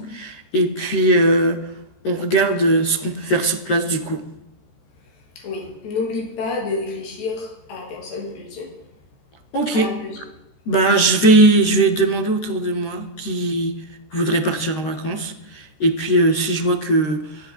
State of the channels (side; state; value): right; late; 14 ms